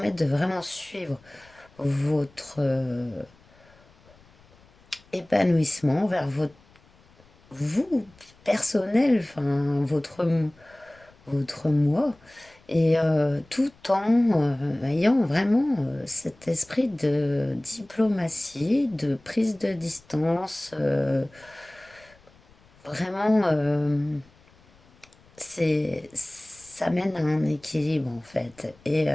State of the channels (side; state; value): left; noise; rumble, 29 dB below the sound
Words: de vraiment suivre votre épanouissement vers votre vous personnel, enfin votre moi, et tout en ayant vraiment cet esprit de diplomatie, de prise de distance, vraiment, ça mène à un équilibre en fait, et